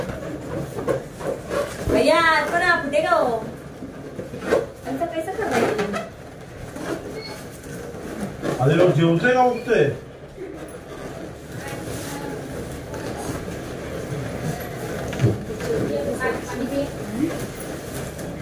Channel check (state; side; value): identical; both; correlation 1.00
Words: भैया पण कुठे का हो असं कैसे करायचं. आधी लोक जेवतोय का उठतोय.